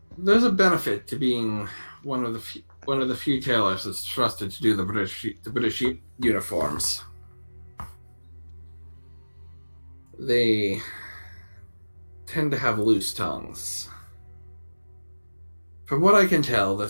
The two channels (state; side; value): inverted; both; correlation -1.00